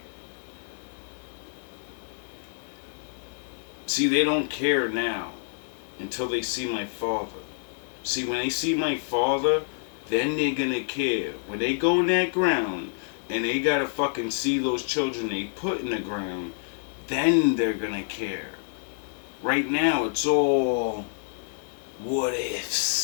See, they don't care now until they see my father. See, when they see my father, then they're gonna care. When they go in that ground and they gotta fucking see those children they put in the ground, then they're gonna care. Right now, it's all what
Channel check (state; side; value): silent; right; 57 dB below the other